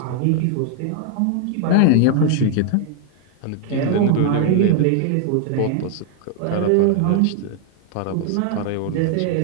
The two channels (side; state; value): both; different; correlation 0.00